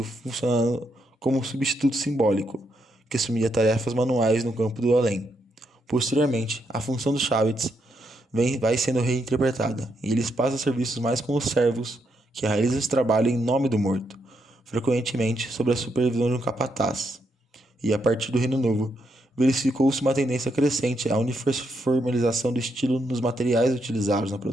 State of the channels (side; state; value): both; normal; correlation 0.79